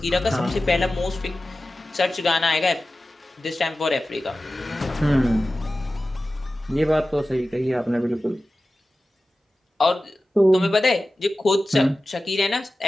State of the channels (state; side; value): normal; both; correlation 0.95